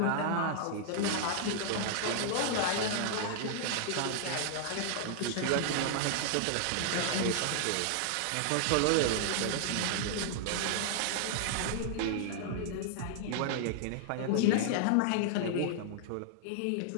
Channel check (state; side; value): different; both; correlation -0.01